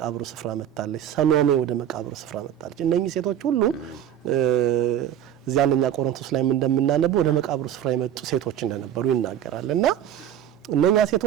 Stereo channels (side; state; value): left; quieter; 10.4 dB